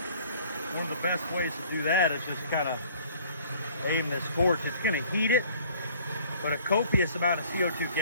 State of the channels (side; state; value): both; inverted; correlation -0.53